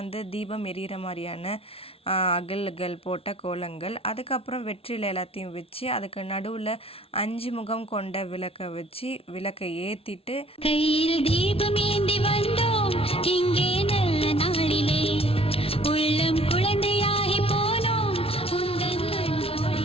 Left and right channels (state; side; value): late; right; 0.27 ms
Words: தீபம் எரியிற மாதிரியான அகல்கள் போட்ட கோலங்கள். அதுக்கப்புறம் வெற்றிலை எல்லாத்தையும் வச்சு அதுக்கு நடுவில் 5 முகம் கொண்ட விளக்கை வச்சு விளக்கை ஏற்றிட்டு கையில் தீபம் ஏந்தி வந்தோம் இங்கே நல்ல நாளிலே உள்ளம் குழந்தையாகி போனோம் உந்தன்